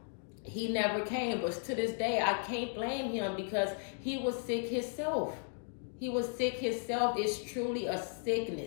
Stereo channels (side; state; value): right; silent; 54 dB below the other